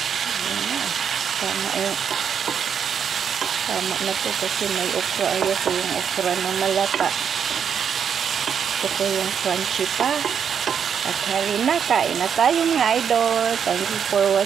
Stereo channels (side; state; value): left; quieter; 7.6 dB